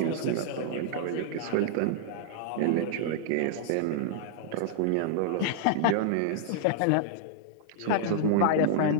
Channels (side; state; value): both; different; correlation -0.01